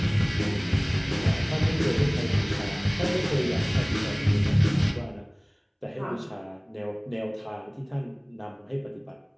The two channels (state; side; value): identical; both; correlation 1.00